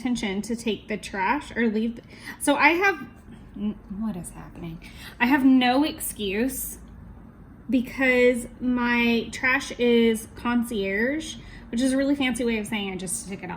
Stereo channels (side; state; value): both; identical; correlation 1.00